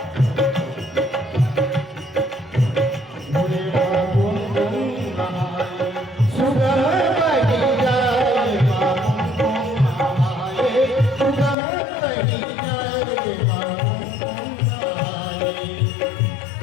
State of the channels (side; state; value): right; drops out; at 11.6 s